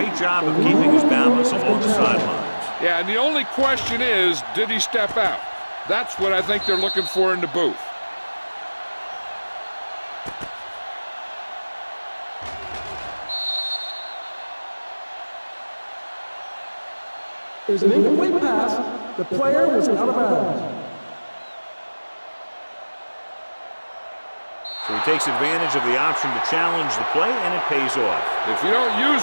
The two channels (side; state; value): both; inverted; correlation -1.00